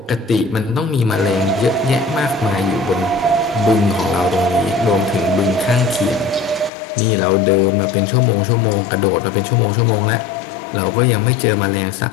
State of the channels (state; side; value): drops out; right; at 6.7 s